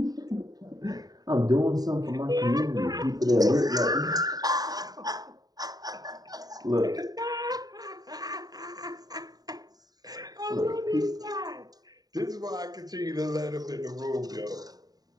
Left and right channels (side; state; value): left; late; 0.18 ms